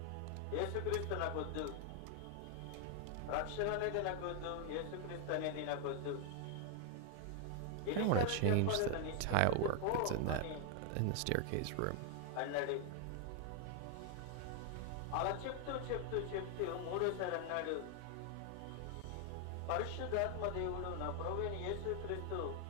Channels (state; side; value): different; both; correlation 0.00